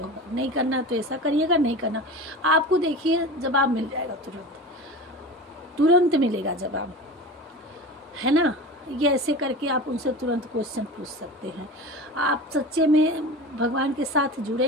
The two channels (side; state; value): both; normal; correlation 0.32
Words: होगा, नहीं करना तो ऐसा करिएगा, नहीं करना। आपको देखिए जवाब मिल जाएगा, तुरंत मिलेगा जवाब, है ना। ये ऐसे करके आप उनसे तुरंत क्वेश्चन पूछ सकते हैं। आप सच्चे में भगवान के साथ